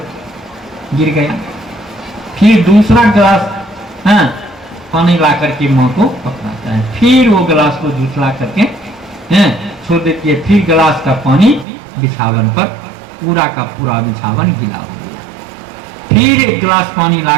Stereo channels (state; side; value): drops out; left; at 11.7 s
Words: गिर गया। फिर दूसरा गिलास पानी ला करके माँ को पकड़ाता है, फिर वो गिलास को झुसला करके छोड़ देती है, फिर गिलास का पानी बिछावन पर पूरा का पूरा बिछावन गीला हो गया। फिर एक गिलास पानी ला